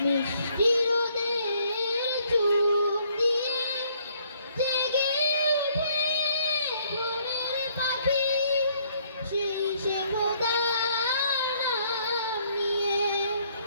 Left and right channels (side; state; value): both; inverted; correlation -0.66